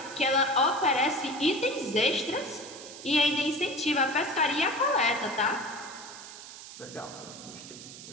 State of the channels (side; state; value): right; noise; hiss, 14 dB below the sound